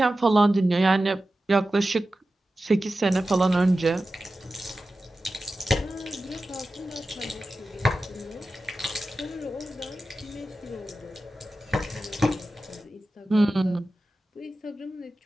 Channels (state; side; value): normal; both; correlation 0.94